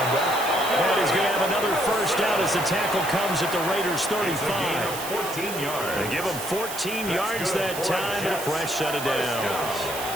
out. And he's going to have another 1st down as the tackle comes at the Raiders' 35. 14 yards. They give him 14 yards that time and a fresh set of downs.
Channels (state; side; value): noise; right; hiss, 9 dB below the sound